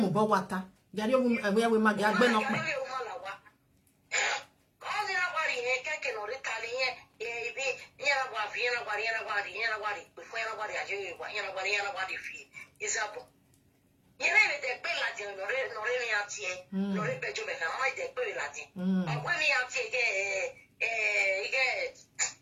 Gary, where we might get Ben. All the nobody, can or Italian, anybody, is up. You know, the Belatin, no Reniatie, no Rebejo, and I the Belatin. When we are taking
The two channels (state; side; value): identical; both; correlation 1.00